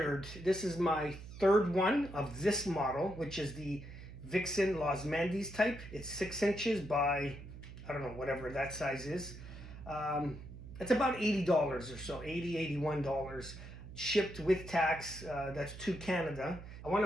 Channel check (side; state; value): right; noise; hum, 13 dB below the sound